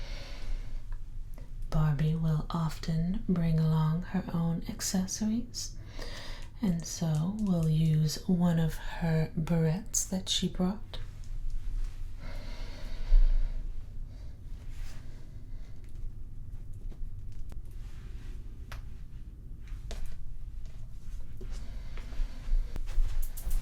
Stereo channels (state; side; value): identical; both; correlation 1.00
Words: Barbie will often bring along her own accessories, and so we'll use one of her barrettes that she brought.